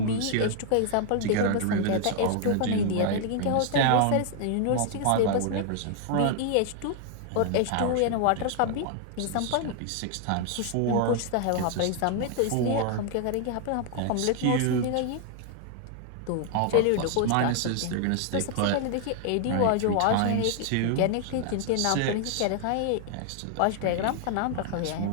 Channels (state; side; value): different; both; correlation 0.00